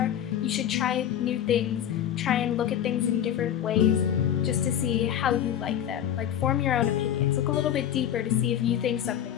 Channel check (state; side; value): quieter; right; 10.3 dB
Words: You should try new things, try and look at things in different ways just to see how you like them. Like, form your own opinions. Look a little bit deeper to see if you think something